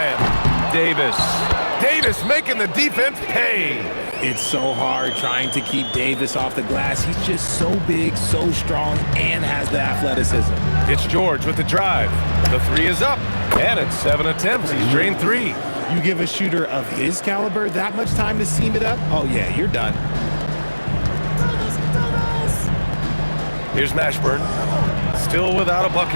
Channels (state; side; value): inverted; both; correlation -1.00